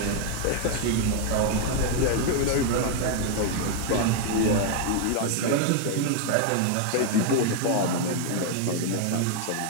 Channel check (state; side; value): different; both; correlation 0.00